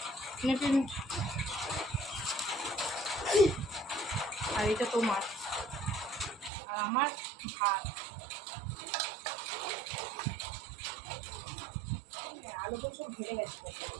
আর এটা তোমার, আর আমার ভাত। আলু তো সব ঘেরে গেছে,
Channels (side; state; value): left; drops out; at 6.5 s